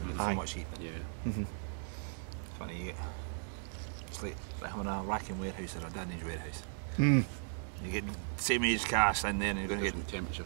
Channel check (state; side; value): silent; left; digital silence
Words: Funny, it's like having a racking warehouse or a dunnage warehouse. You get the same age cast in there, and you're going to get different